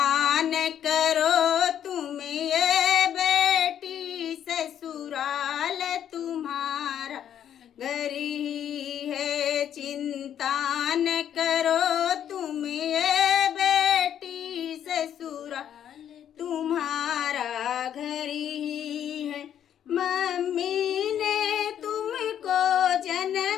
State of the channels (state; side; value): quieter; right; 9.8 dB